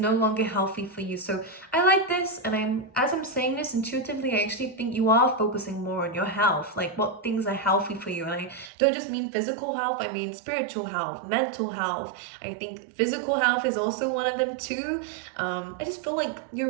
longer healthy for you. So I like this, and as I'm saying this intuitively, I actually think you are focusing more on your health, like what things are healthy for you. And I don't just mean physical health, I mean spiritual health, mental health. I think physical health is also one of them too. I just feel like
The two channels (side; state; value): left; drops out; at 8.7 s